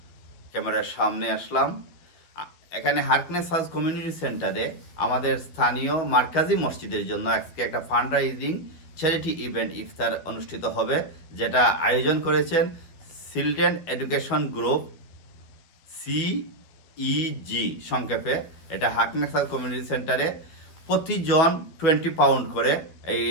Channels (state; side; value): late; right; 12 ms